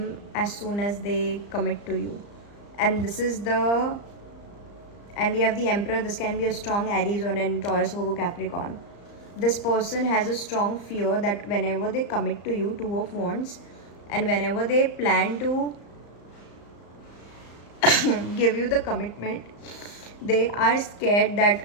as soon as they commit to you. And this is the, and we have the Emperor. This can be a strong Aries or an Taurus, Virgo, Capricorn. This person has a strong fear that whenever they commit to you, 2 of Wands, and whenever they plan to give you the commitment, they are scared that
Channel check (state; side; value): late; right; 34 ms